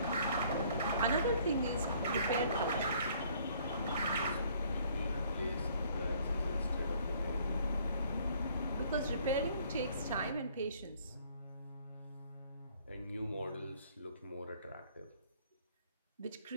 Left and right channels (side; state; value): both; inverted; correlation -0.60